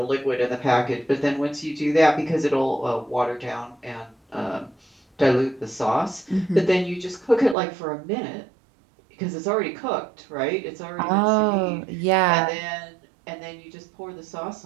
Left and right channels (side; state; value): left; drops out; at 7.6 s